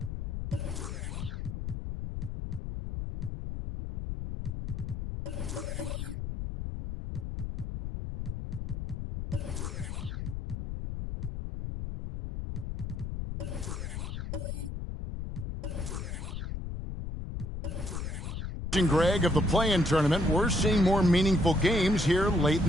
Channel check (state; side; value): noise; left; rumble, 5 dB below the sound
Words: Greg, of the play-in tournament, we're seeing more meaningful games here late in